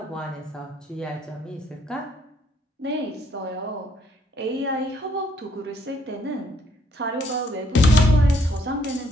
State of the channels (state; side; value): normal; both; correlation 0.68